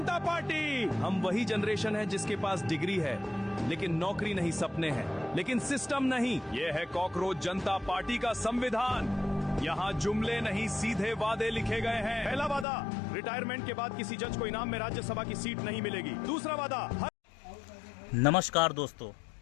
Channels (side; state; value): right; drops out; at 12.7 s